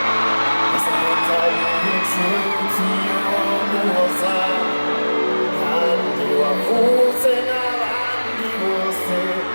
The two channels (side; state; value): both; inverted; correlation -1.00